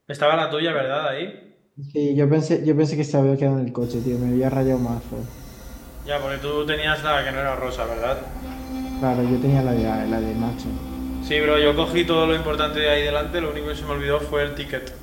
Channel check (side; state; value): both; identical; correlation 1.00